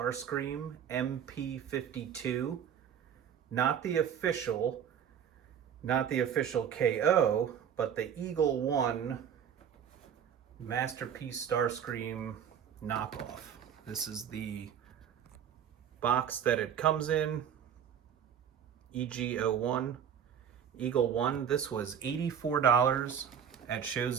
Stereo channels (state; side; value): quieter; left; 8.5 dB